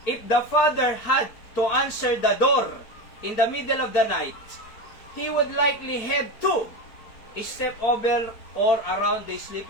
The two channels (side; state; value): right; late; 4.5 ms